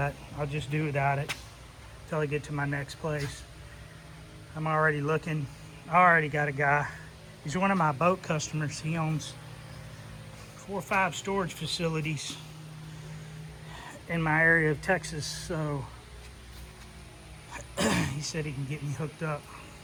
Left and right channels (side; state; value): both; identical; correlation 1.00